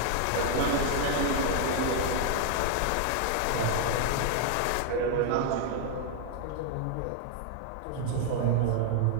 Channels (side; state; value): both; different; correlation 0.00